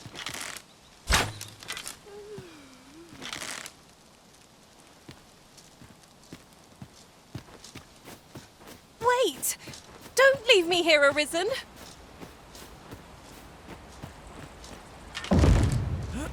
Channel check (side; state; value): both; identical; correlation 1.00